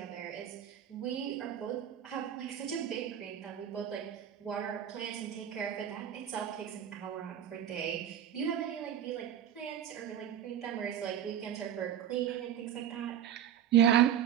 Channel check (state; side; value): quieter; left; 9.9 dB